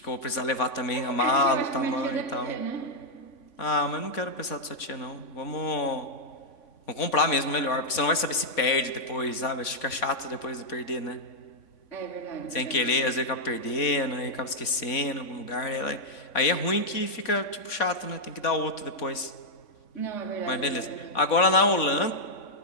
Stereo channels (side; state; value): right; late; 3.5 ms